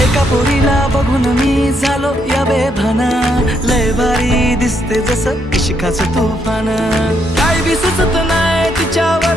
एका पोरीला बघून मी झालो या बेभाना, लय भारी दिसते जसं इश्काचं तुफान। काय बी सुचत नाही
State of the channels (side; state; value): both; normal; correlation 0.75